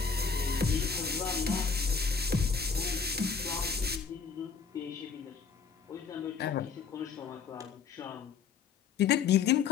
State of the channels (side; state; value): right; quieter; 5.7 dB